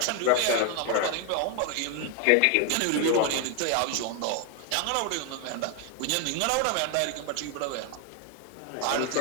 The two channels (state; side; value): different; both; correlation 0.01